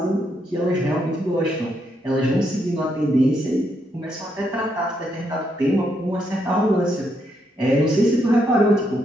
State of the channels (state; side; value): normal; both; correlation 0.77